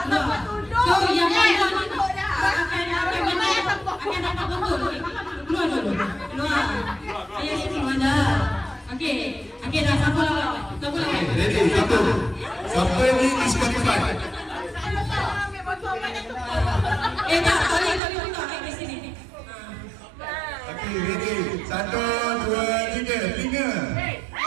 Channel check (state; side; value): drops out; left; at 18.0 s